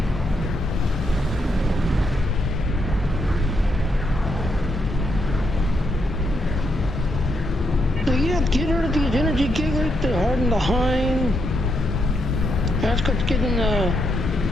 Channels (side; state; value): both; normal; correlation 0.79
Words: So yeah, get rid of these energy gateways to harden the hind. That's what's getting the